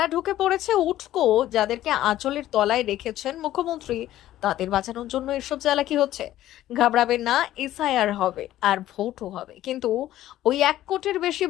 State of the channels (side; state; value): right; quieter; 13.7 dB